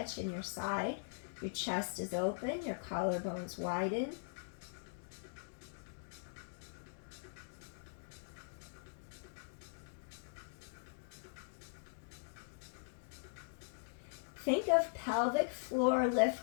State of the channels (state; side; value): silent; right; digital silence